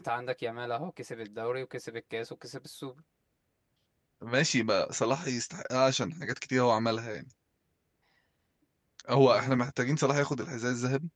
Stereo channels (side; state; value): both; identical; correlation 1.00